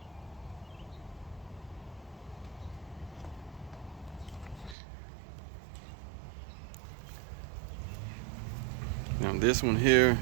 Now this one here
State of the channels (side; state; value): left; drops out; at 4.8 s